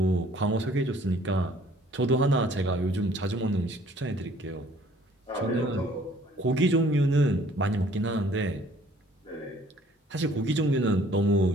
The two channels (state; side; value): normal; both; correlation 0.57